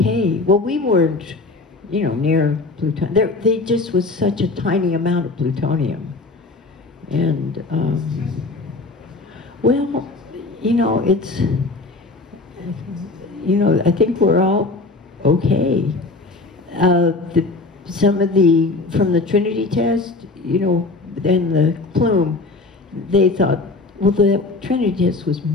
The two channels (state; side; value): quieter; right; 3.5 dB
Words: Well, we weren't, near plutonium. They just was such a tiny amount of plutonium. And, well, it's, I think we're all okay. Some of from the Trinity test, and the plume, they thought, well, the Trinity test was